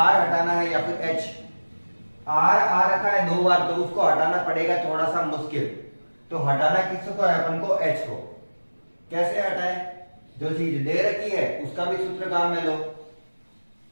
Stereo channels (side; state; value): both; inverted; correlation -1.00